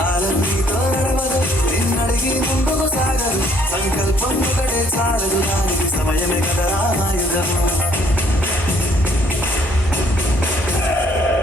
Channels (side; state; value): both; normal; correlation 0.64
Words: నీతో నడవదు నిన్నడిగి ముందుకు సాగదు సంకల్పం ఒకటే చాలదు దానికి సమయమే కదా ఆయుధము